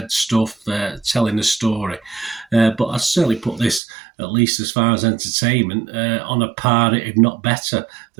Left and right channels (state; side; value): drops out; left; at 3.8 s